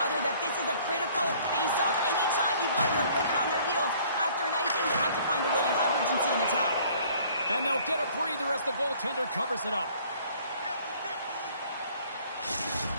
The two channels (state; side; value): inverted; both; correlation -0.56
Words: that this is a critical face-off. Anytime you've got your opponent on their heels after an icing, you have to find a way to have urgency in attack. And they'll get a breather as the goaltender covers it up.